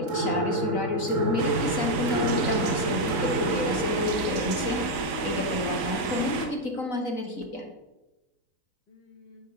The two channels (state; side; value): late; right; 3.9 ms